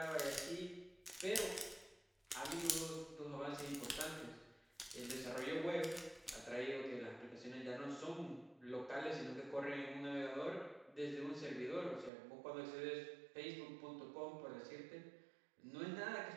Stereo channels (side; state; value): left; drops out; at 12.1 s